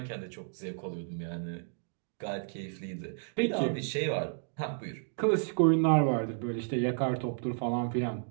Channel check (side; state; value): left; silent; digital silence